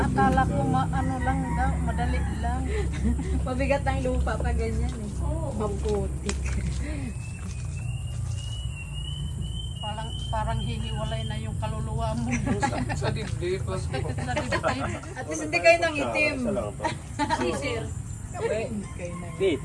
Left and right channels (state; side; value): identical; both; correlation 1.00